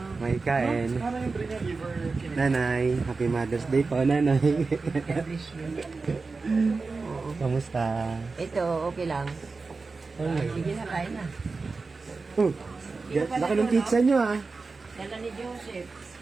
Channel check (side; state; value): left; quieter; 4.1 dB